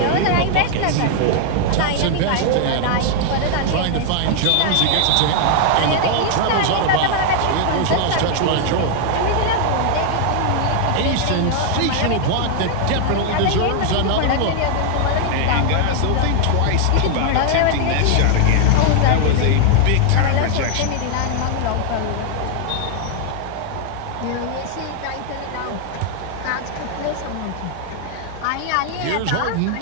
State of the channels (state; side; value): different; both; correlation 0.00